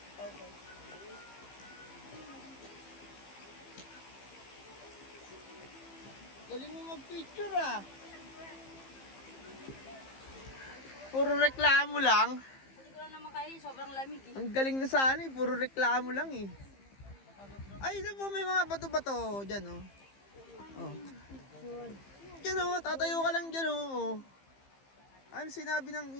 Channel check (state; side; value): late; right; 15 ms